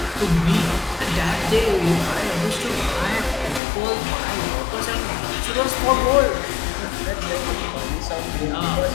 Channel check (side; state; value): right; drops out; at 3.6 s